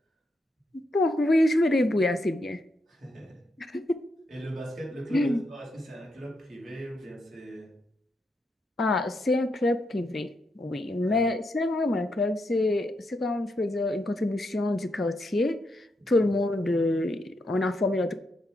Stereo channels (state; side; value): normal; both; correlation 0.81